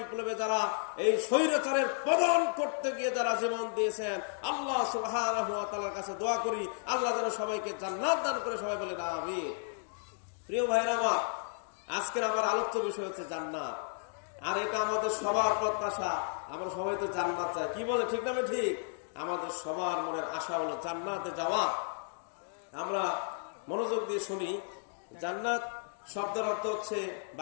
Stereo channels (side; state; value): right; silent; digital silence